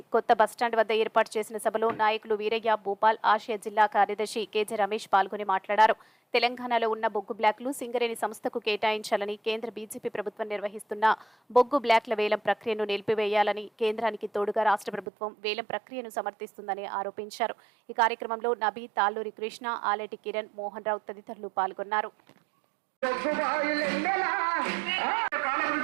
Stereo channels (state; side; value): drops out; left; at 15.1 s